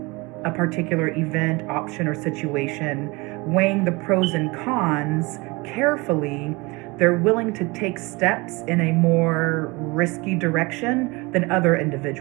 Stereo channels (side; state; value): left; quieter; 25.1 dB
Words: a particular event, option, or situation, weighing the pros and cons carefully, they're willing to take steps in a more risky direction than other